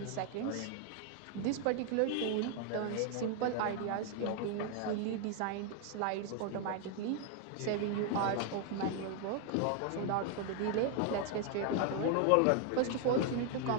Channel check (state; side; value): different; both; correlation 0.00